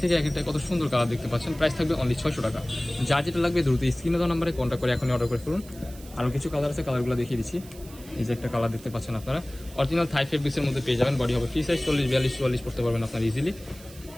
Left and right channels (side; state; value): right; noise; hiss, 20 dB below the sound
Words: থেকে এক একটা কত সুন্দর কালার দেখতে পাচ্ছেন। প্রাইস থাকবে অনলি 600 টাকা। যার যেটা লাগবে দ্রুত স্ক্রিনে দেওয়া নাম্বারে কন্ট্যাক্ট করে এখনই অর্ডার করে ফেলুন। আরও কিছু কালার আছে, কালারগুলো দেখিয়ে দিচ্ছি। এই যে একটা কালার দেখতে পাচ্ছেন আপনারা, অরিজিনাল থাই ফেব্রিক্সের মধ্যে পেয়ে যাবেন। বডি হবে ফ্রি সাইজ, 40, 42, 44 পড়তে পারবেন আপনারা ইজিলি।